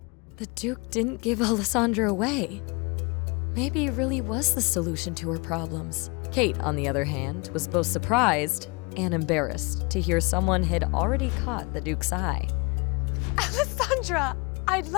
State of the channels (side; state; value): right; quieter; 29.0 dB